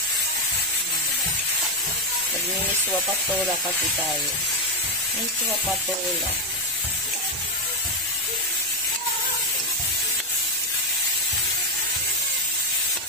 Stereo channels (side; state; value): both; normal; correlation 0.06